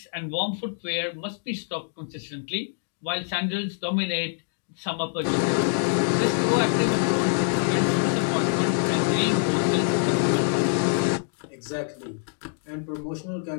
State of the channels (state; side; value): silent; right; digital silence